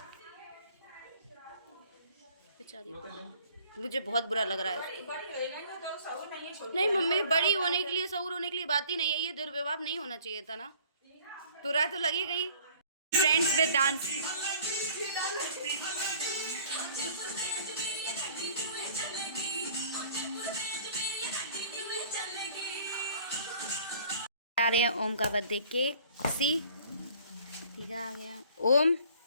बेचारी मुझे बहुत बुरा लग रहा है। नहीं मम्मी, बड़ी होने के लिए, सऊर होने के लिए बात ही नहीं है। ये दुर्व्यवहार नहीं होना चाहिए था ना। बुरा तो लगी गई। Friends with dance. आ रहे हैं ओम का बर्थडे केक। ठीक है, आ गया ओम।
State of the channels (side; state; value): both; inverted; correlation -0.53